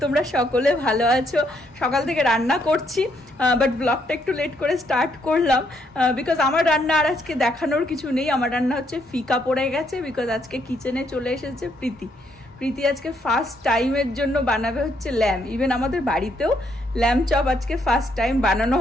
তোমরা সকলে ভালো আছো। সকাল থেকে রান্না করছি, বাট ব্লগটা একটু লেট করে স্টার্ট করলাম বিকজ আমার রান্না আর আজকে দেখানোর কিছু নেই। আমার রান্না হচ্ছে ফিকা পড়ে গেছে বিকজ আজকে কিচেনে চলে এসেছে প্রীতি আজকে ফার্স্ট টাইমের জন্য বানাবে হচ্ছে ল্যাম্প। ইভেন আমাদের বাড়িতেও ল্যাম্প চপ আজকে ফার্স্ট টাইম বানানো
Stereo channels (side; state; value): both; normal; correlation 0.73